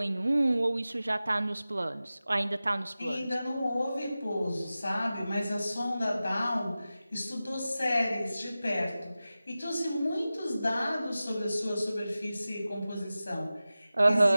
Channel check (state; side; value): inverted; both; correlation -0.95